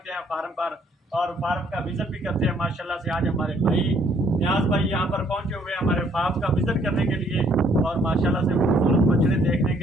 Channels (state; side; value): normal; both; correlation 0.64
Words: हैं फार्म पर और फार्म का विज़िट भी करते हैं। माशाल्लाह से आज हमारे भाई न्याज भाई यहाँ पर पहुँचे हुए हैं हमारे फार्म का विज़िट करने के लिए और माशाल्लाह से खूबसूरत बछड़े देखने